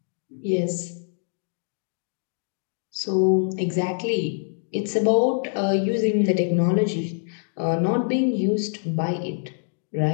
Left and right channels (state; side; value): silent; right; digital silence